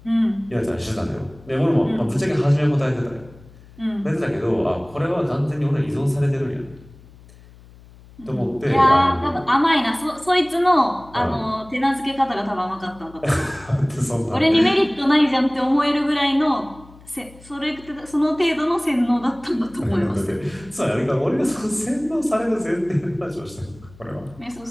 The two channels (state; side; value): noise; left; hum, 23 dB below the sound